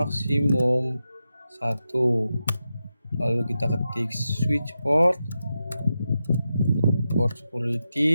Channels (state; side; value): inverted; both; correlation -0.89